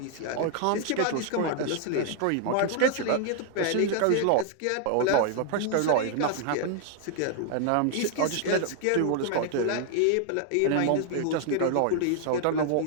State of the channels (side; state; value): both; different; correlation 0.00